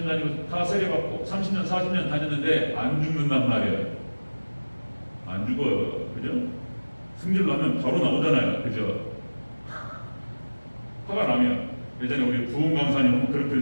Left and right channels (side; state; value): both; inverted; correlation -1.00